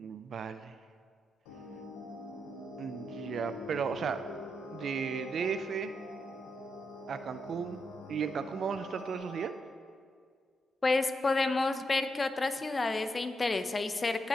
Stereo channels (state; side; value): normal; both; correlation 0.82